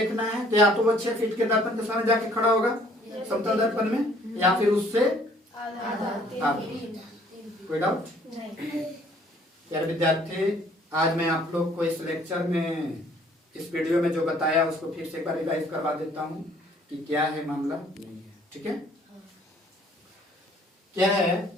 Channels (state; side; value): normal; both; correlation 0.59